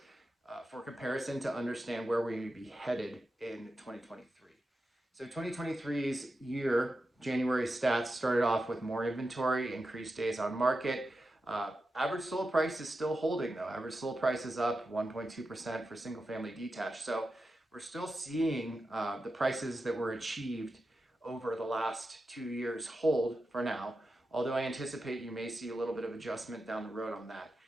for comparison to understand where we may be headed in 2023. So 2023's year, January stats started off with more inventory, increased days on market. Average sold price is still holding though. Average sold price is up 1.2% for single family detached. So we're still seeing the prices that were achieved over the last 2 years hold for now, although I anticipate you may see a little bit of adjustment down the road on that.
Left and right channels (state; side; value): normal; both; correlation 0.90